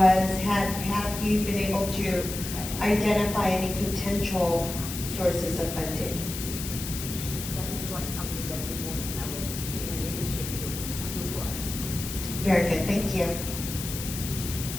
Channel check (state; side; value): noise; left; hiss, 7 dB below the sound